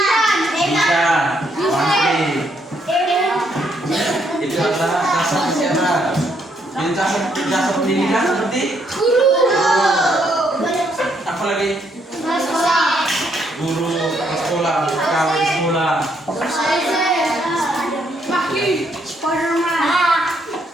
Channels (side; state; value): both; normal; correlation 0.73